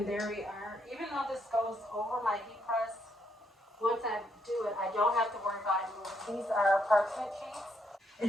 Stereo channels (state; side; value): normal; both; correlation 0.75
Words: there we are. Even though this goes over my heat press, once I do it, I don't have to worry about it moving. These are parchment sheets.